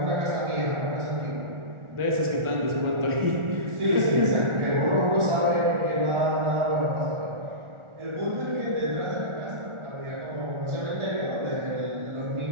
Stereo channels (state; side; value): late; left; 1.4 ms